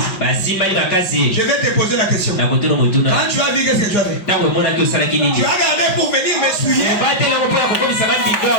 Je vais te poser la question. Quand tu as vu, qu'est-ce que tu as fait? Tu as regardé pour venir me souiller.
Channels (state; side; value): late; right; 5.4 ms